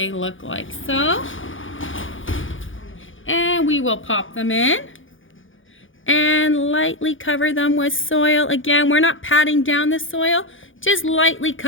look like. So, and And we will pop them in and lightly cover them with soil. Again, we're not patting down the soil, just lightly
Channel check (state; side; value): late; right; 0.57 ms